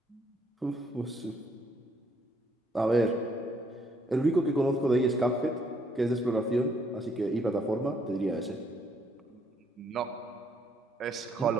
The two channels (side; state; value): both; normal; correlation 0.70